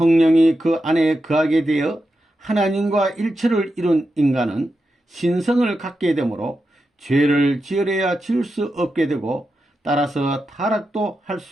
그 안에 거하게 되어 하나님과 일체를 이룬 인간은 신성을 갖게 되므로 죄를 지으려야 지을 수 없게 되고 따라서 타락도 할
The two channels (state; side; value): normal; both; correlation 0.88